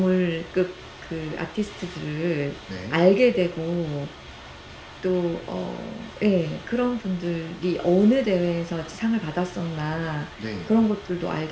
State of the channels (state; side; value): identical; both; correlation 1.00